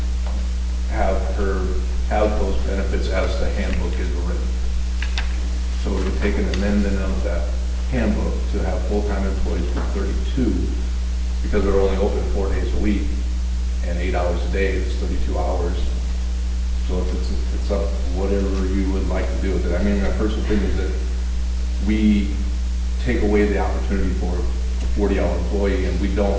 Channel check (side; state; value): both; identical; correlation 1.00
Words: have her have those benefits as the handbook is written. So we would take an amendment of that handbook to have full-time employees for 32, because they're only open 4 days a week, and 8 hours a day, it's 32 hours. So it's up, whatever you would like to do with it. I mean, my personal thing is that we take away the opportunity for a 40-hour employee, and